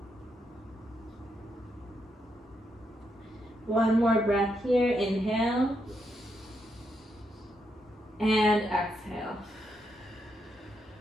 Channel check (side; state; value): both; normal; correlation 0.80